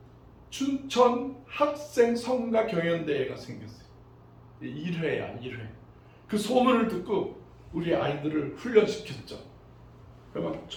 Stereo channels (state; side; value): identical; both; correlation 1.00